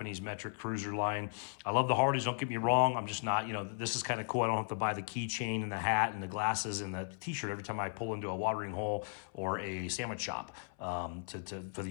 metric cruiser line. I love the Harleys, don't get me wrong. I'm just not, this is kind of cool. I don't have to buy the keychain and the hat and the glasses and the t-shirt every time I pull into a watering hole or a sandwich shop for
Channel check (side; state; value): right; silent; 54 dB below the other